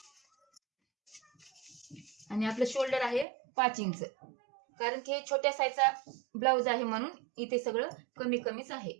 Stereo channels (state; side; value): drops out; left; at 3.2 s